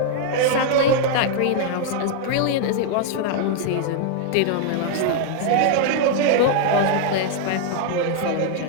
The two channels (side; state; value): both; different; correlation -0.01